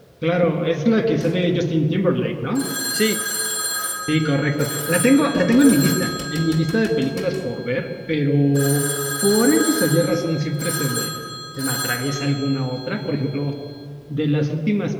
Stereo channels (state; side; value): identical; both; correlation 1.00